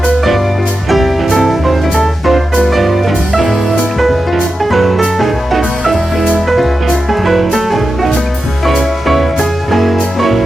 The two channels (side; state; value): both; normal; correlation 0.91